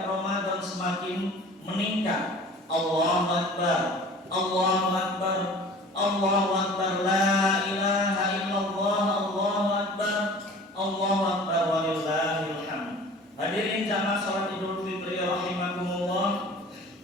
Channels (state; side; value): normal; both; correlation 0.44